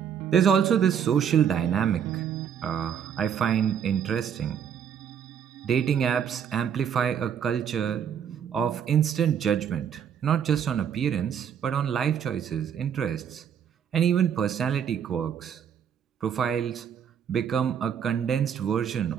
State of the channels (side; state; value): left; quieter; 8.2 dB